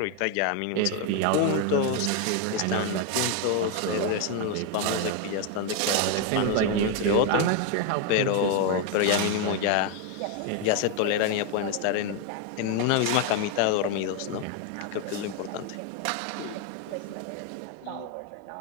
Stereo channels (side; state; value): both; different; correlation 0.01